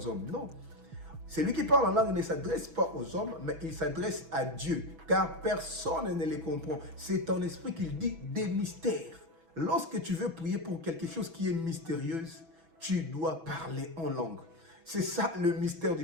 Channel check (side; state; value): left; late; 6.1 ms